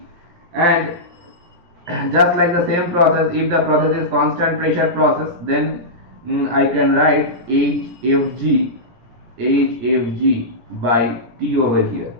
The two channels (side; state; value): left; late; 17 ms